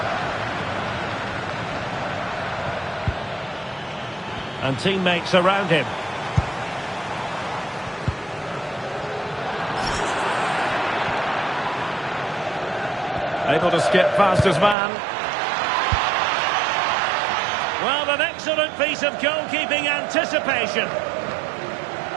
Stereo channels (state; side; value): drops out; left; at 14.8 s